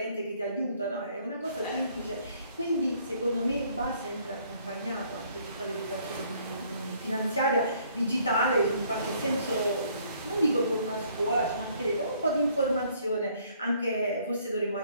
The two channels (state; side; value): inverted; both; correlation -0.63